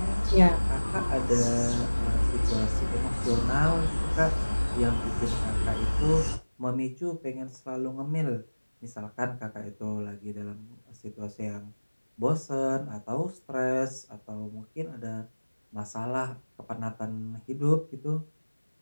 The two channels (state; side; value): inverted; both; correlation -1.00